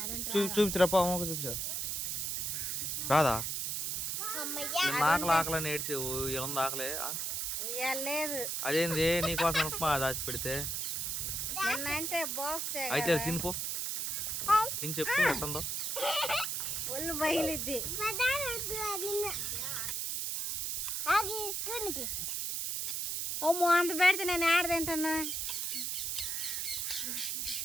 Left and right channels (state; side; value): noise; right; hiss, 1 dB below the sound